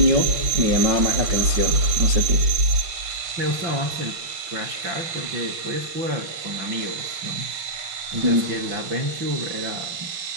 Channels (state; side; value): late; left; 5.9 ms